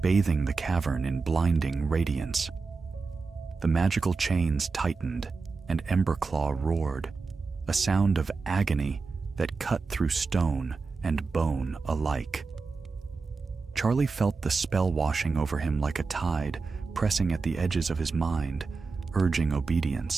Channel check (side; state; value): left; quieter; 4.4 dB